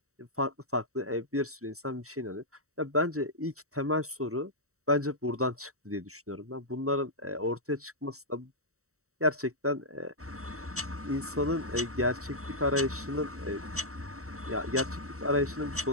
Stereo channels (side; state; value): left; late; 0.64 ms